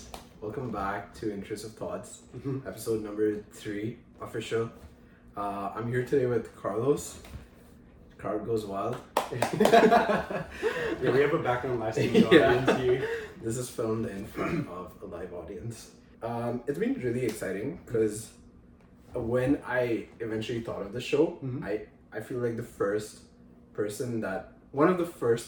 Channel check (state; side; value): identical; both; correlation 1.00